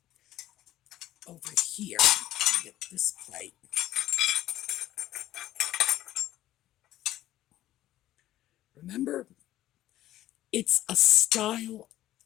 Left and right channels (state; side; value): quieter; right; 14.0 dB